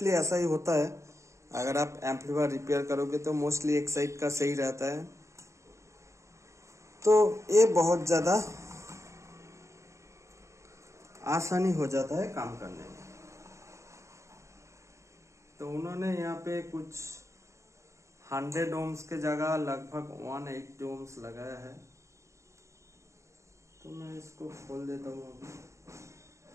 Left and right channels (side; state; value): left; late; 0.14 ms